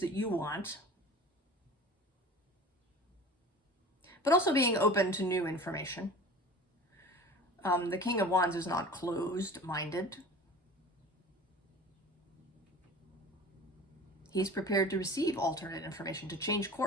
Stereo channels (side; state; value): both; normal; correlation 0.39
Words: you want, but also being open to new information. The King of Wands is not closed-minded. He's prepared to receive alternate information, to change